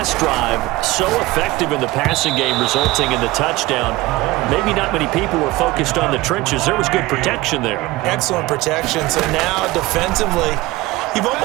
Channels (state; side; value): quieter; left; 19.3 dB